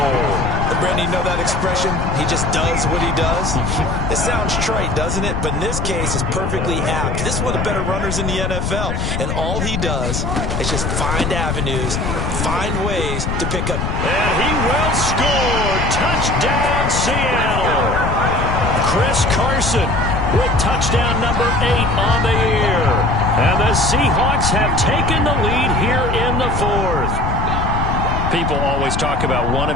And Brandon, you know that expression? He just does what he does. It sounds trite, doesn't it? But in this case, it's perfectly apt. This is one of the better runners in the NFL. And all he does is just find avenues, find ways to pick up. And he will score. Touchdown, Seattle. Chris Carson with touchdown number 8 on the year. And the Seahawks have taken the lead here in the 4th. People always talk about one of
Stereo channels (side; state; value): left; noise; rumble, 2 dB below the sound